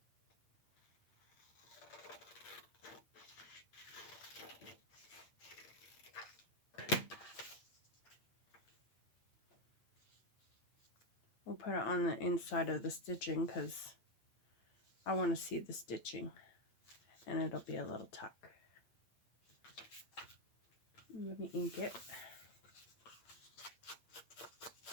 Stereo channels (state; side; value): late; right; 8.7 ms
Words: We'll put it on the inside of the stitching because I want to see the stitching, and it'll be a little tuck. Let me ink it.